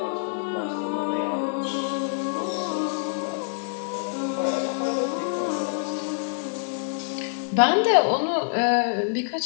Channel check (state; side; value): silent; right; digital silence